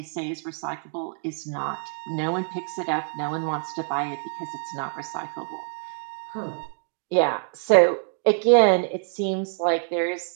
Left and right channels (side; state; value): left; silent; digital silence